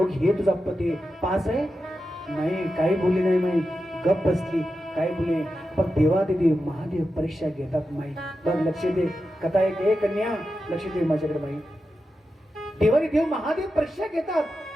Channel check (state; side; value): normal; both; correlation 0.90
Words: तुझा पती पास आहे? नाही, काही बोलली नाही माई. गप बसली, काय बोले. पण देवादेवी महादेव परीक्षा घेतात माई. बघ लक्ष दे, कथा एक. हे कन्या लक्ष दे माझ्याकडे माई. देवाने देव महादेव परीक्षा घेतात.